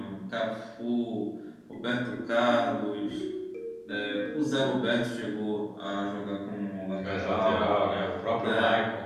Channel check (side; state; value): both; identical; correlation 1.00